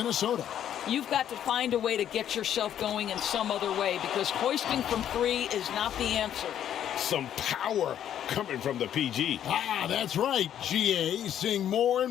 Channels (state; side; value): quieter; right; 10.3 dB